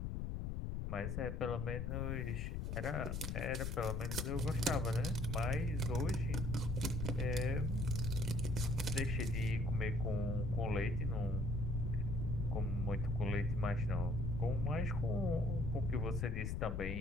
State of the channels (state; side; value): noise; left; rumble, 2 dB below the sound